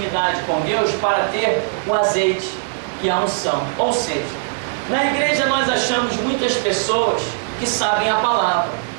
com Deus para ter o azeite, que é a unção. Ou seja, na igreja nós achamos muitas pessoas que sabem a palavra.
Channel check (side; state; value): left; silent; digital silence